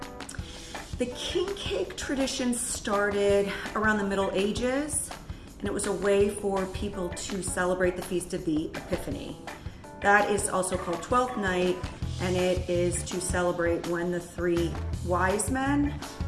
The king cake tradition started around the Middle Ages, and it was a way for people to celebrate the Feast of the Epiphany. That is also called Twelfth Night, and it is to celebrate when the three wise men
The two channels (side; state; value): both; identical; correlation 1.00